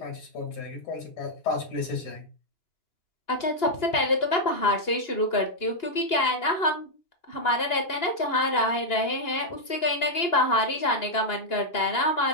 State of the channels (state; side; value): late; right; 2.9 ms